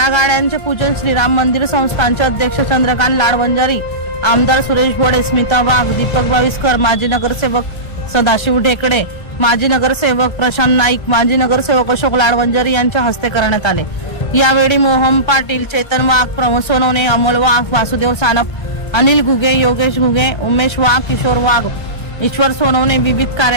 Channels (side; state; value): right; late; 1.5 ms